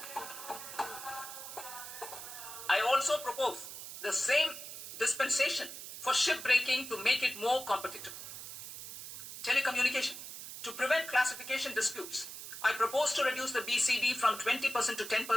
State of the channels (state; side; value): noise; right; hiss, 10 dB below the sound